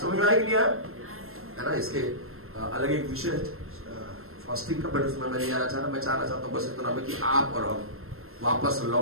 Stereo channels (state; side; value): late; left; 0.62 ms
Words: समझ में आएगी नहीं है ना? इसके अलग एक विषय फास्टिंग का, बट उसमें मैं नहीं आना चाहता। मैं चाहना चाहता हूँ बस इतना में कि आप और हम वापस